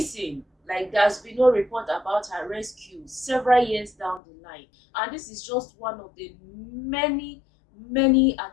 Like, there's been no report about her rescue several years down the line. And this is just one of the many, many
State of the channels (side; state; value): right; drops out; at 4.2 s